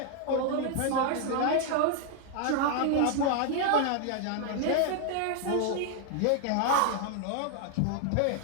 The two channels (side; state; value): both; different; correlation 0.00